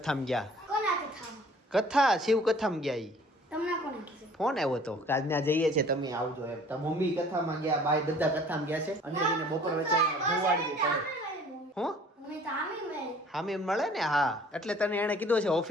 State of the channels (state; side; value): normal; both; correlation 0.52